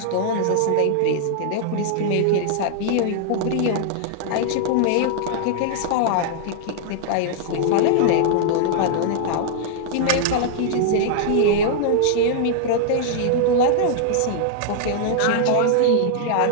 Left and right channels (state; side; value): different; both; correlation -0.01